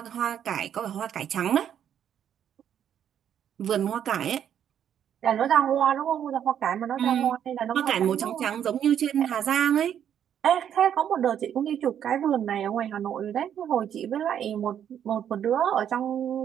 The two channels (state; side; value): quieter; left; 9.4 dB